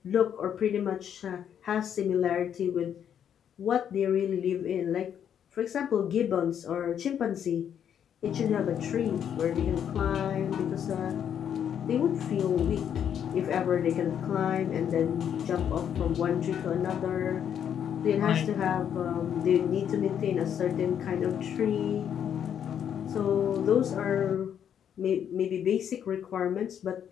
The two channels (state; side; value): quieter; right; 8.9 dB